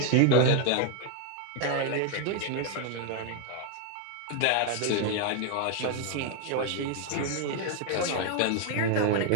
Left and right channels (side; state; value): both; different; correlation 0.01